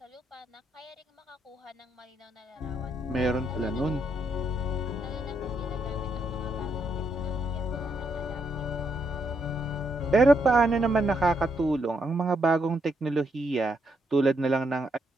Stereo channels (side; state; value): both; normal; correlation 0.77